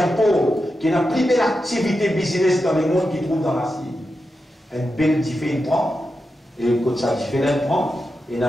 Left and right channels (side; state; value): both; normal; correlation 0.89